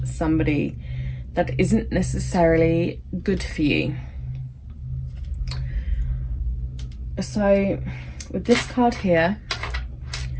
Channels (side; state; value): both; identical; correlation 1.00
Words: somebody that isn't necessarily good for you. So with this card here,